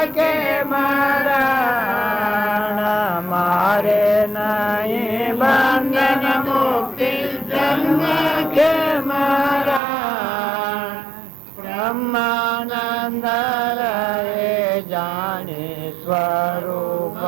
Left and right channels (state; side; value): drops out; left; at 9.8 s